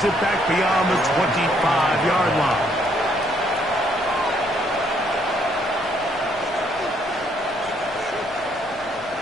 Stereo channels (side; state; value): both; normal; correlation 0.69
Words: it back beyond the 25-yard line.